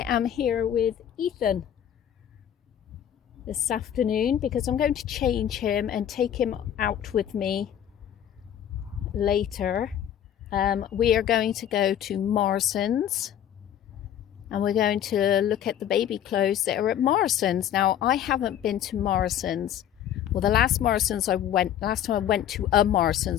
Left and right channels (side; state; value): right; quieter; 10.3 dB